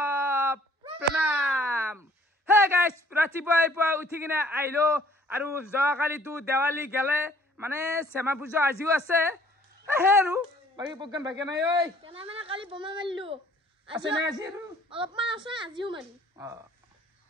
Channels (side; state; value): both; normal; correlation 0.58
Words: pranam. Hey guys, rati boy po uthi kina ailo, aru joa kali tu Diwali gale, mane sema pujo ajiu ase. Hey ru, bagi program bagi na oi. Kena mana kali boma malu. Ase na ajiu. Alapman ase ajiu mali.